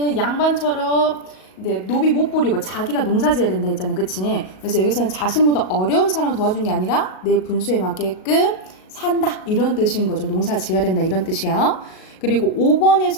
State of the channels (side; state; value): right; late; 38 ms